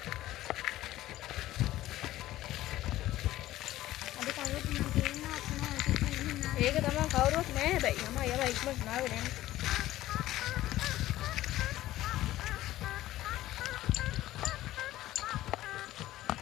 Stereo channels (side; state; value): right; quieter; 15.2 dB